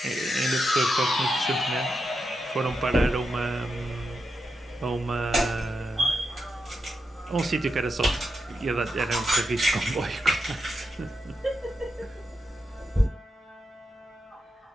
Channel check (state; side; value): normal; both; correlation 0.86